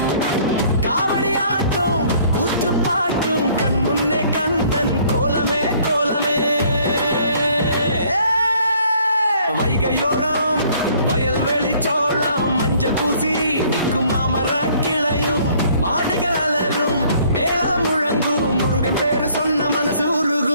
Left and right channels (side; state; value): both; inverted; correlation -0.59